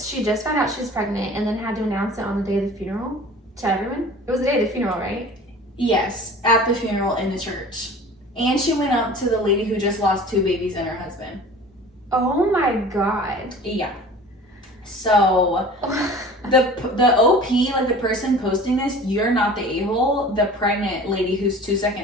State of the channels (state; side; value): normal; both; correlation 0.42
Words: just found out she was pregnant and then had to announce it on the day of the funeral to everyone. It was the day of the funeral, right? Yes, at the funeral in the church. And she went up to the lady who just lost 2 babies and her husband. Oh my god. Yeah. So the OP, like the person posting this, you're not the a-hole. The pregnant lady who's 2